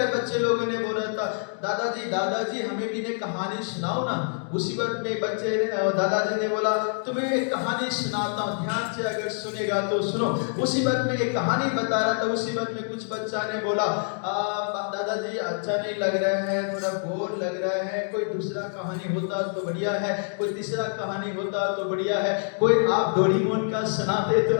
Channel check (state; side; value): silent; right; 61 dB below the other